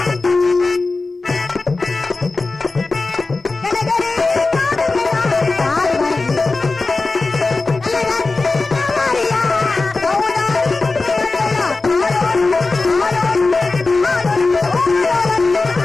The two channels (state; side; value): quieter; right; 3.6 dB